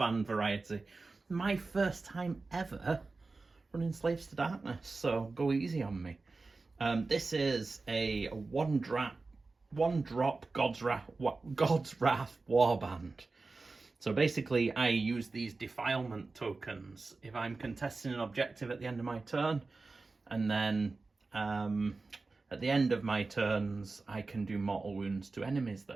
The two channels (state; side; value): quieter; left; 3.7 dB